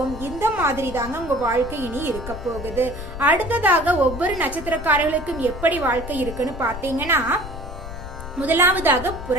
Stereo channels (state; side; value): noise; left; rumble, 10 dB below the sound